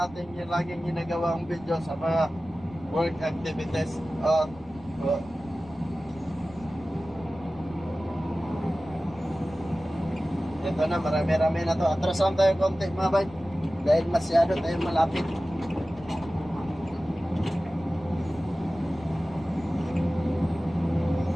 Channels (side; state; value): right; noise; rumble, 21 dB below the sound